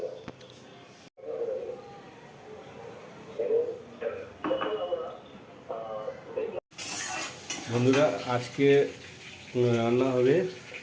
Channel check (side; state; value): both; identical; correlation 1.00